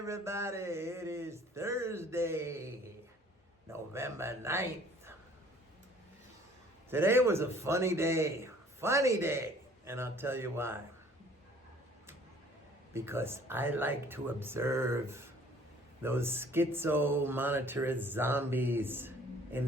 It is Thursday, November 9th. Today was a funny day, and I'll tell you why. Because I like to observe those schizo monetarist zombies in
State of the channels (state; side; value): normal; both; correlation 0.54